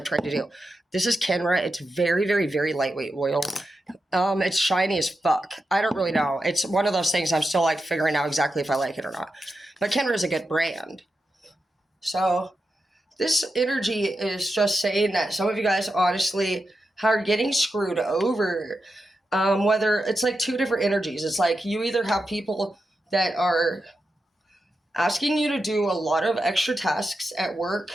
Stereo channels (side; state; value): both; normal; correlation 0.88